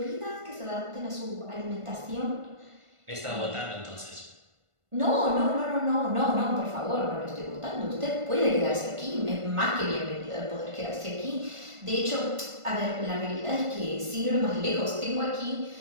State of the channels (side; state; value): left; late; 1.5 ms